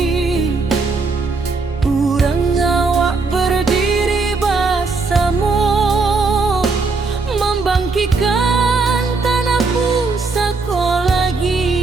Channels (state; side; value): quieter; left; 4.1 dB